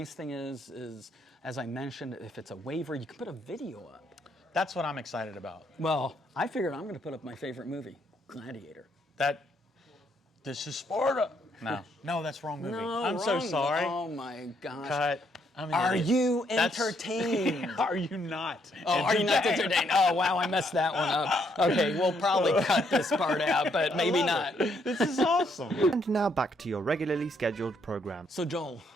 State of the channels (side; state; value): both; normal; correlation 0.72